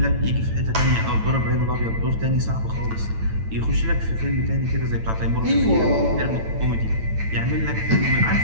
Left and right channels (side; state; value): left; late; 9.0 ms